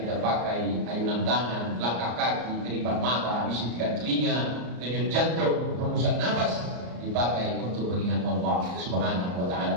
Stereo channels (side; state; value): left; late; 33 ms